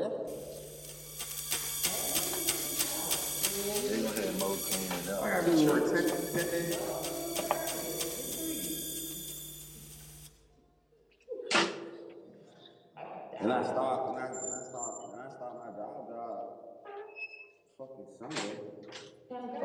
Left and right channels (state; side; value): identical; both; correlation 1.00